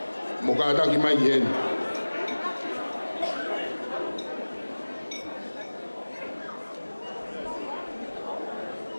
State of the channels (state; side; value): inverted; both; correlation -1.00